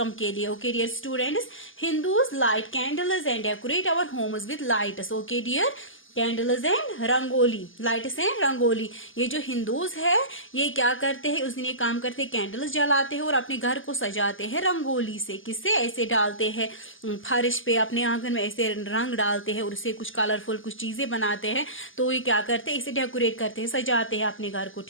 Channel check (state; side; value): late; right; 0.58 ms